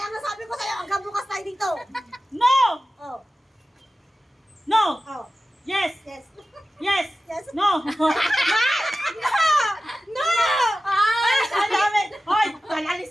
nga sabi ko sa'yo, hanggang bukas tayo dito. No! Oh, No! oh, Yes! yes. Yes! Yes. No! No! Ay, ang dami! Hoy,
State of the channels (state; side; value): normal; both; correlation 0.95